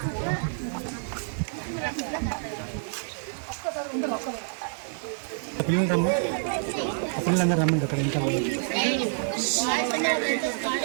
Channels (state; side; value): silent; left; 56 dB below the other